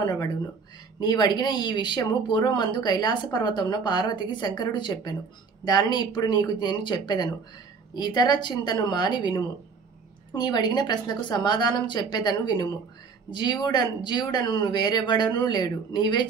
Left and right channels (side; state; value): left; quieter; 5.2 dB